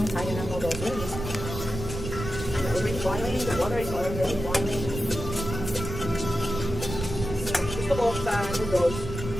tayo ng noodles. Yes. Already boiling. The water is already boiling. Gusto ko sa noodles,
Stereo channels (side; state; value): right; noise; rumble, 7 dB below the sound